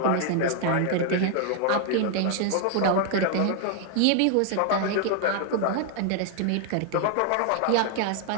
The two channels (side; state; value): both; different; correlation 0.00